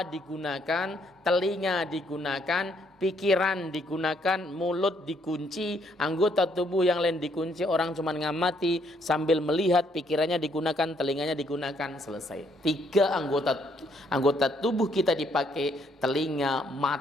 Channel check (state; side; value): normal; both; correlation 0.70